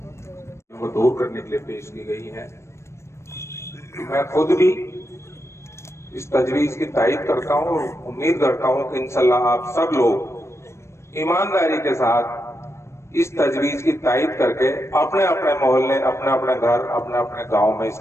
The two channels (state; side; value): late; right; 0.13 ms